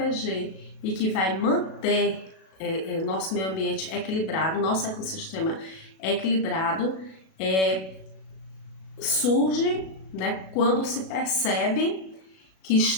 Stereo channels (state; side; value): late; right; 37 ms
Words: e que vai manter nosso meio ambiente equilibrado, nosso ecossistema equilibrado, surge, né, quando se percebe que